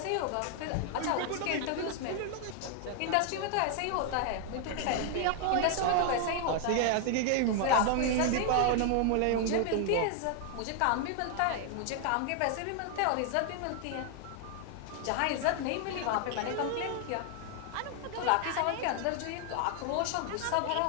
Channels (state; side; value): different; both; correlation 0.00